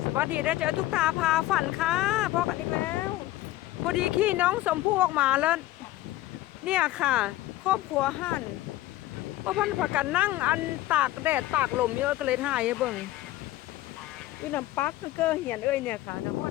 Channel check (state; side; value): quieter; right; 16.1 dB